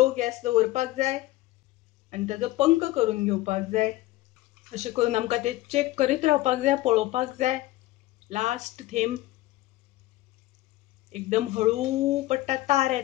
गॅस दवरपाक जाय आनी ताजो पंख करून घेवपाक जाय। अशें करून आमकां ते चेक करीत रावपाक जाय, पळोवपाक जाय। लास्ट थेंब एकदम हळू पडटा तार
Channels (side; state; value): right; quieter; 17.4 dB